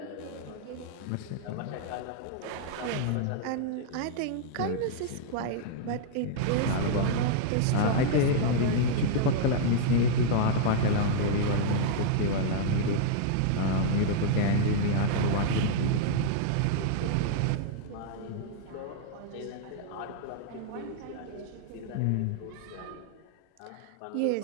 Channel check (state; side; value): different; both; correlation -0.01